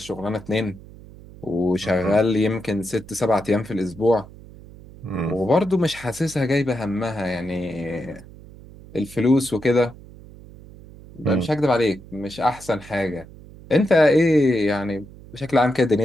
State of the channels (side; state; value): right; noise; hum, 19 dB below the sound